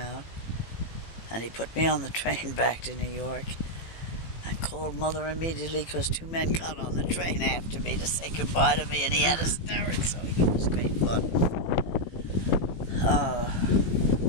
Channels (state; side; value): late; right; 18 ms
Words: and he put me on the train back to New York and called Mother immediately because 2 men got on the train after me to say goodbye to me, and he had hysterics, so it was great fun.